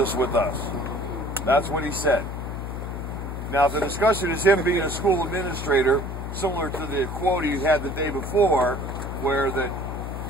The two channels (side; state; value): left; noise; hum, 6 dB below the sound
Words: with us. That's what he said. Now, the discussion is him being a school administrator, similar to the quote he had the day before, where